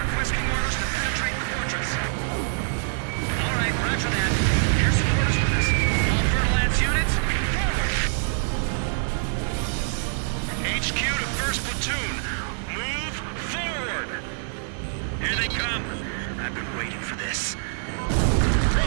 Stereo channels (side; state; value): left; silent; digital silence